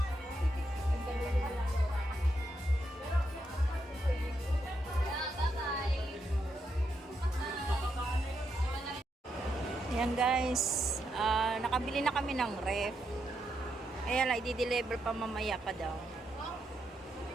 Ayan guys, nakabili na kami ng ref. Kaya lang, i-deliver pa mamaya pa daw.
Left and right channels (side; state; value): both; normal; correlation 0.81